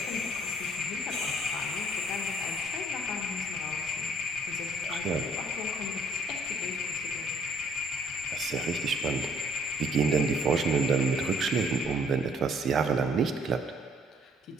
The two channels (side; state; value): both; normal; correlation 0.61